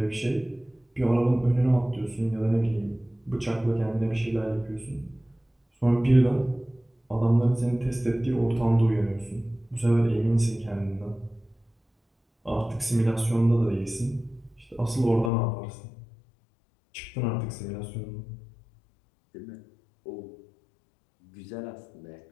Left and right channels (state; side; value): drops out; right; at 15.3 s